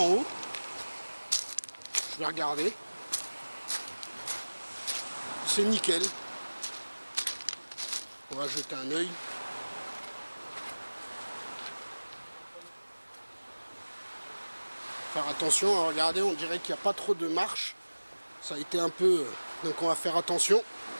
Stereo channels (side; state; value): both; inverted; correlation -1.00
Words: haut. Je vais regarder. C'est nickel. On va jeter un œil. Faire attention, hein, regardez, on dirait qu'il n'y a pas trop de marche. Ça a été un peu... Donc on va faire attention.